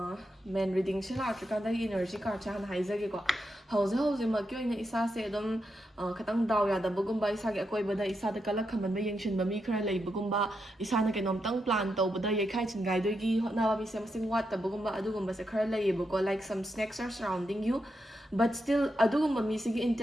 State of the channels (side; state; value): both; normal; correlation 0.84